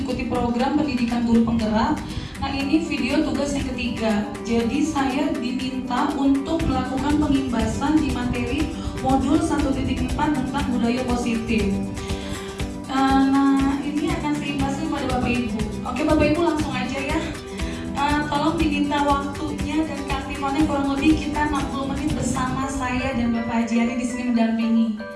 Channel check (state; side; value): identical; both; correlation 1.00